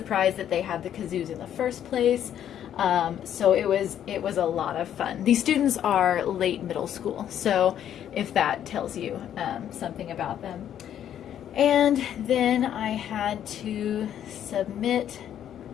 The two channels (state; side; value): quieter; right; 10.2 dB